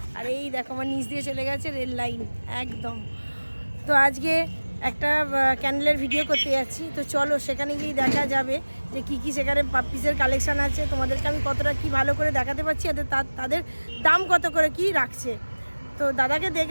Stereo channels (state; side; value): inverted; both; correlation -1.00